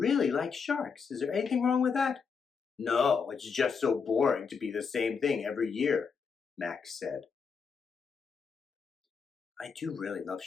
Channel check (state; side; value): quieter; right; 5.7 dB